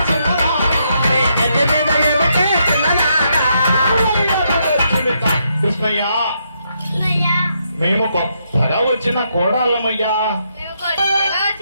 కృష్ణయ్యా, మేము కొత్తగా వచ్చిన కోడాళ్ళమయ్యా.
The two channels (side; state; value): both; inverted; correlation -0.78